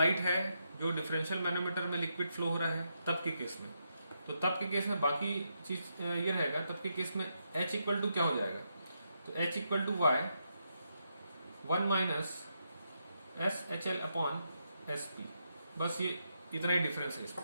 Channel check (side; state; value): both; inverted; correlation -0.81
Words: है, जो डिफरेंशियल मैनोमीटर में लिक्विड फ्लो हो रहा है, तब के केस में, तो तब के केस में बाकी चीज ये रहेगा। तब के केस में H इक्वल टू क्या हो जाएगा, तो H equal to y 1 minus S H L upon S P, बस ये इतना ही डिफरेंस है